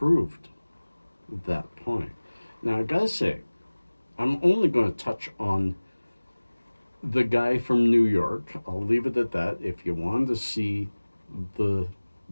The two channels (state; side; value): inverted; both; correlation -1.00